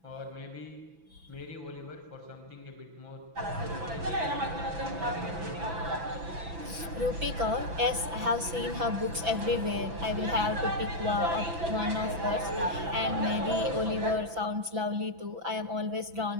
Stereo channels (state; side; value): late; left; 6.0 ms